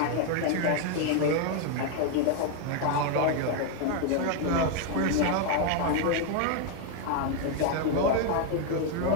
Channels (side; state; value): both; different; correlation 0.01